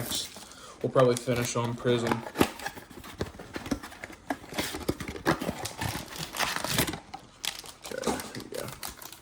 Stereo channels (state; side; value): identical; both; correlation 1.00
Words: We'll probably finish on prism. Okay, here we go.